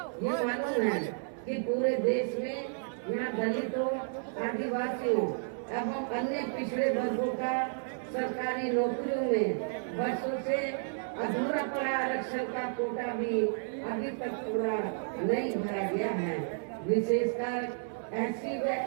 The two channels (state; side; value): silent; left; 56 dB below the other